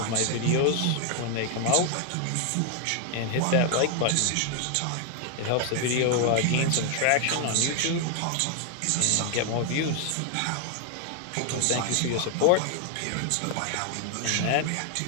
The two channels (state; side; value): different; both; correlation 0.00